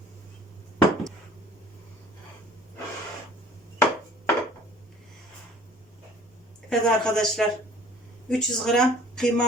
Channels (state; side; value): normal; both; correlation 0.51